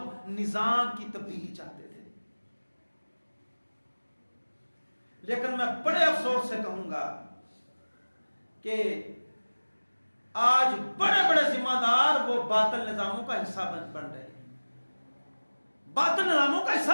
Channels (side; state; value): both; inverted; correlation -1.00